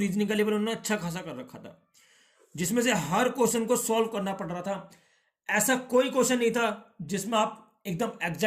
का लेवल उन्होंने अच्छा खासा कर रखा था, जिसमें से हर क्वेश्चन को सॉल्व करना पड़ रहा था। ऐसा कोई क्वेश्चन नहीं था जिसमें आप एकदम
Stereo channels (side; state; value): both; identical; correlation 1.00